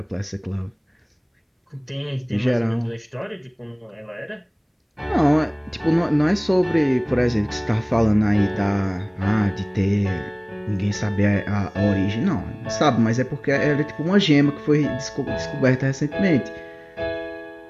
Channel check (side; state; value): both; identical; correlation 1.00